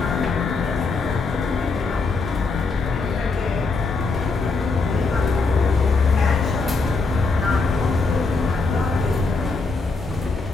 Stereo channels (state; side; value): quieter; right; 4.0 dB